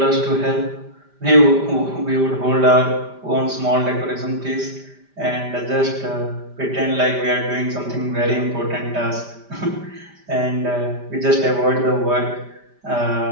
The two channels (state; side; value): late; left; 5.1 ms